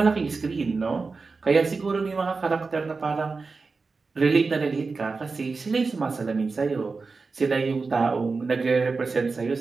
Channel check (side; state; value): left; quieter; 4.3 dB